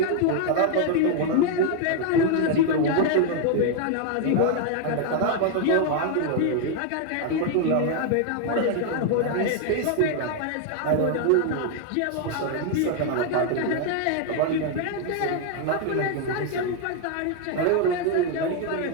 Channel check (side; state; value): both; different; correlation 0.00